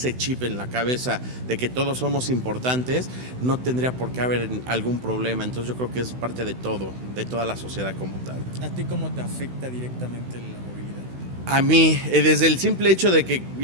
chip en la cabeza de que todos somos importantes, no tendría por qué haber algún problema. Entonces yo creo que es parte de todo, de toda la sociedad como tal. ¿A ti cómo te afecta directamente la movilidad? A mí, desde el simple hecho de que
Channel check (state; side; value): late; left; 16 ms